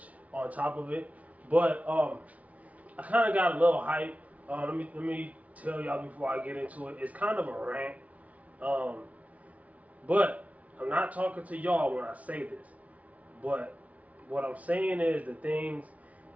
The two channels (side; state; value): left; late; 0.068 ms